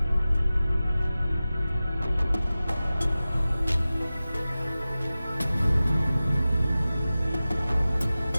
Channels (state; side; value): inverted; both; correlation -0.96